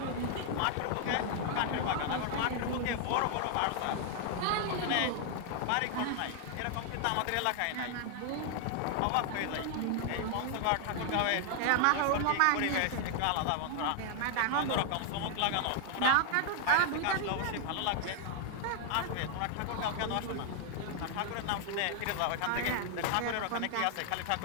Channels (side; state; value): both; different; correlation 0.00